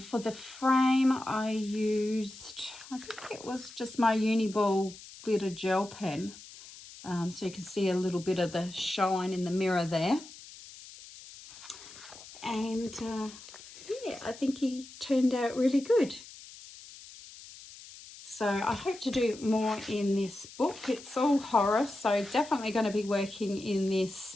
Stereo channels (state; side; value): noise; left; hiss, 17 dB below the sound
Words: for the frame I used, I think it was just my Uniball glitter gel pen, so you can see a little bit of the shine in the mirror there. And yeah, I think he turned out really good. So I hope to do more in this book. It's all horror, so definitely going to be working in